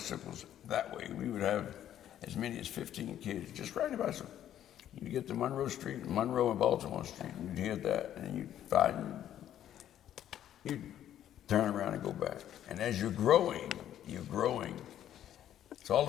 that way. We would have as many as 15 kids just riding a bicycle. You'd get to Monroe Street, Monroe and Baltimore Street, and you'd hear that, and you'd find, you'd turn around and go back. And as you're growing, so all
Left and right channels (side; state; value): right; quieter; 11.1 dB